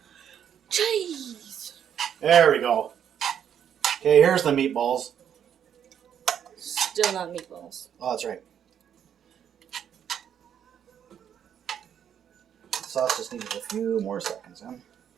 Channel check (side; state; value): left; quieter; 9.0 dB